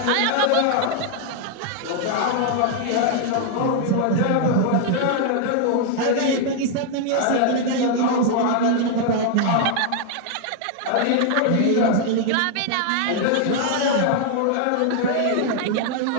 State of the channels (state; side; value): different; both; correlation 0.00